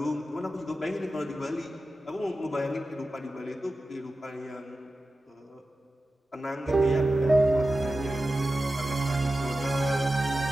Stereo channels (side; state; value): both; normal; correlation 0.93